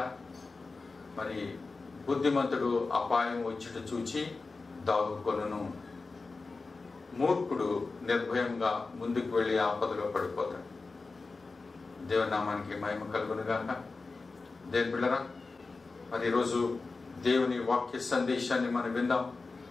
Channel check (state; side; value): quieter; right; 3.9 dB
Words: మరి బుద్ధిమంతుడు అపాయం వచ్చుట చూచి దాగుకొనును, మూర్ఖుడు నిర్భయంగా ముందుకు వెళ్ళి ఆపదలో పడిపోతాడు. దేవుని నామానికి మహిమ కలుగును గాక. దేవుని బిడ్డలారా, మరి ఈరోజు దేవుని వాక్య సందేశాన్ని మనం విందాం.